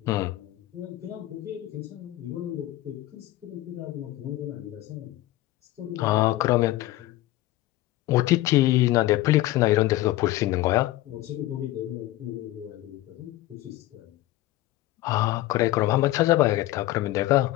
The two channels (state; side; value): quieter; right; 16.4 dB